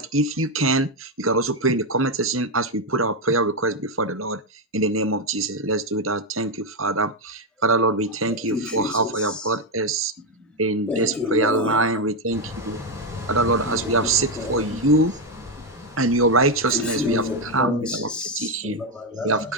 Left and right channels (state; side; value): normal; both; correlation 0.05